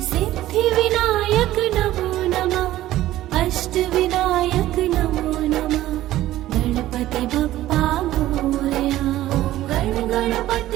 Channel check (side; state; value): left; quieter; 14.7 dB